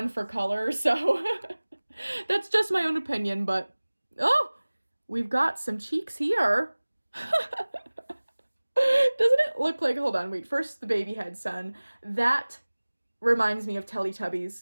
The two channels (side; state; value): both; inverted; correlation -1.00